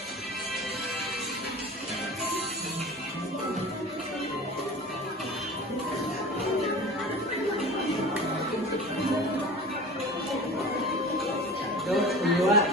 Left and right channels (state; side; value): normal; both; correlation 0.37